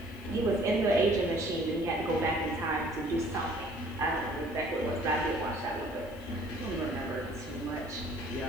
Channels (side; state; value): left; noise; hiss, 25 dB below the sound